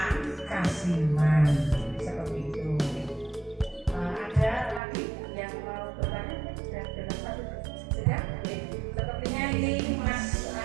Kasiman. Seperti itu. Ada lagi yang mau bertanya? Sudah? Oke. Sepertinya ini Mas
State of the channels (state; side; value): drops out; left; at 4.8 s